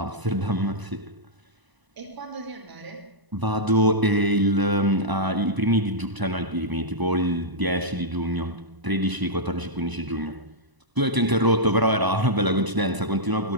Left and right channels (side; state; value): left; late; 1.0 ms